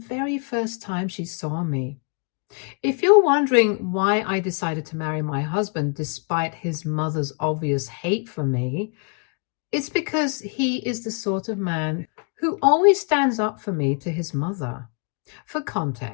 first time she saw me. If you're wondering why I decided to marry my husband despite his mother's obvious hate for me, it's because he is the sort of man who always stands up for me to his mother. For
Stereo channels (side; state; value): right; quieter; 38.7 dB